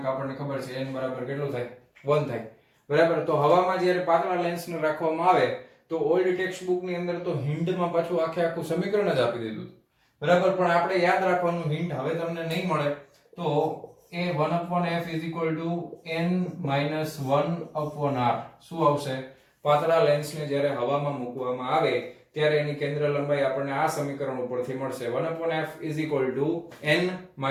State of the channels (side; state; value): both; identical; correlation 1.00